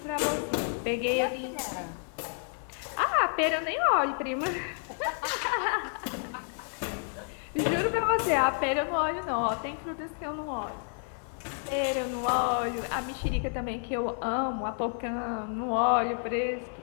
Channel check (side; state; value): right; silent; 58 dB below the other